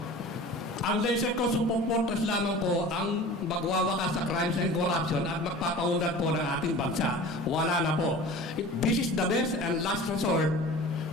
Ang laser ko Super Fortress lamang po ang magwawakas sa crimes and corruption at magpapaunlad po ng ating bansa. Wala na po. This is the best and last resort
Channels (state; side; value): normal; both; correlation 0.39